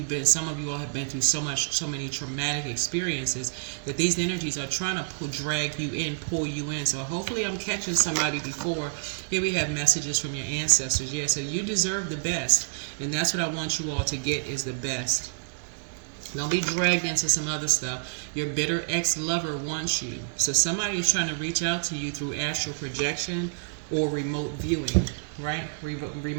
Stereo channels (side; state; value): left; silent; digital silence